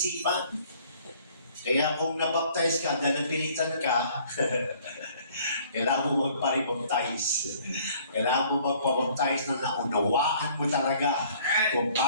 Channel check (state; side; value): inverted; both; correlation -0.56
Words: Kaya kung nabaptize ka, dahil napilitan ka, kailangan mo magparibaptize. Kailangan mo magpabaptize na naunawaan mo talaga kung